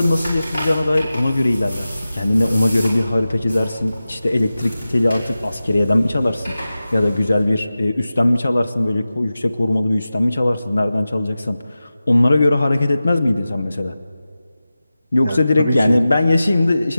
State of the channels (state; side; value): inverted; both; correlation -0.95